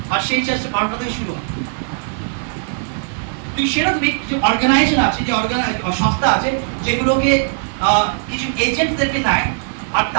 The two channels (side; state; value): left; silent; digital silence